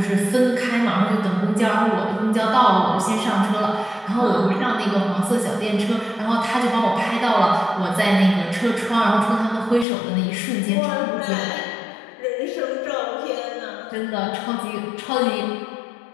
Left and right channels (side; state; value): right; drops out; at 9.9 s